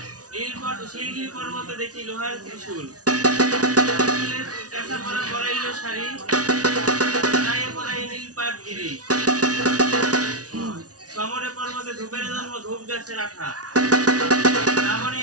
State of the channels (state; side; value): late; left; 0.68 ms